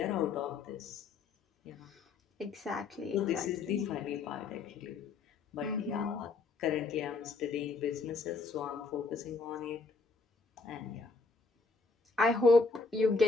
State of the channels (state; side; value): quieter; right; 4.1 dB